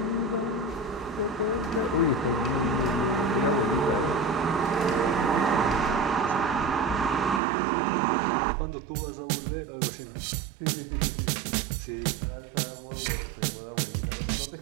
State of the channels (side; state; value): left; drops out; at 7.4 s